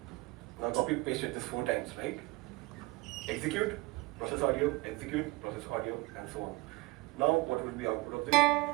now copy pasted this 4 times, right? execute, process audio, execute, process audio, and so on. Now, what will be output of this?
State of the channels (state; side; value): quieter; left; 22.0 dB